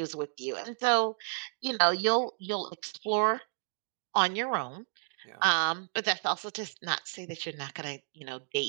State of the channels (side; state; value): left; silent; digital silence